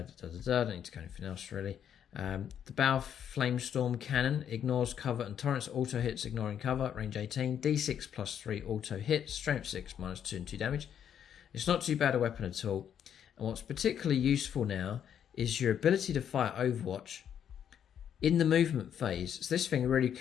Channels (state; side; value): quieter; right; 9.0 dB